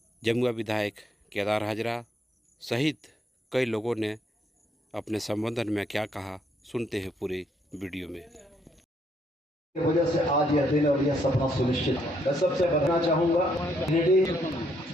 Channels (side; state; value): both; normal; correlation 0.72